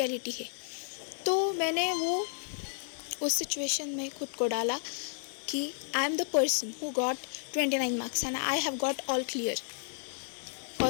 है। तो मैंने वो उस सिचुएशन में खुद को डाला कि I am the person who got 29 marks and I have got all clear.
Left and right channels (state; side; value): silent; right; digital silence